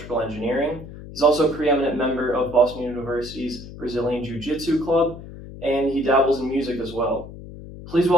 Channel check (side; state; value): left; noise; hum, 14 dB below the sound